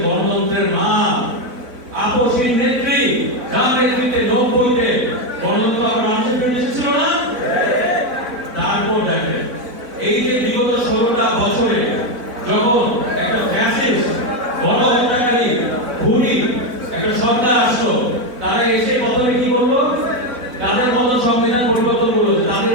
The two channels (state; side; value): late; left; 4.0 ms